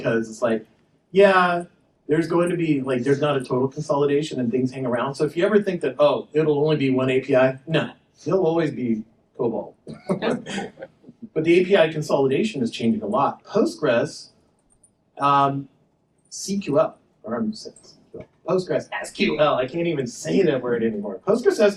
it's like, yeah, there's going to be, like, there's not a total consolidation and things hang around. So if you ever think that, oh, it'll only be one API, no, there'll always be COBOL. But the API consolidation is changing a lot. Postgres, CQL, or I'm saying CQL. Postgres SQL, I can't even say that word anymore. Postgres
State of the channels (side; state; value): both; identical; correlation 1.00